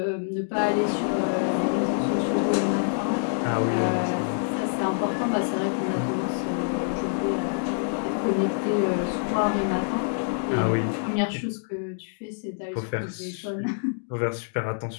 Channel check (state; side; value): silent; right; digital silence